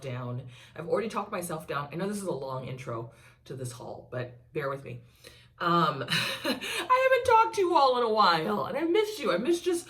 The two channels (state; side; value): identical; both; correlation 1.00